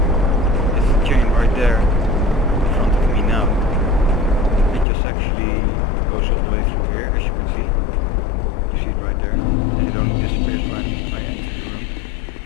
it's the chain right there in front of me now. It just actually goes all the way through here, as you can see. You see it right there, and it only disappears when I enter the room,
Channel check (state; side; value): drops out; right; at 4.9 s